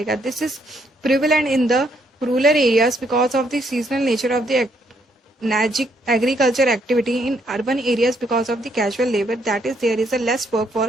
This is prevalent in the rural areas because of the seasonal nature of the agriculture activity in urban areas because of the casual labor, that is there is a less work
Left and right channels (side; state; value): both; normal; correlation 0.72